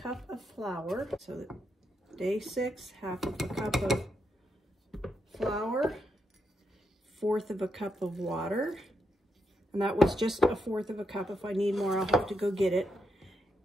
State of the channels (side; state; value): both; normal; correlation 0.81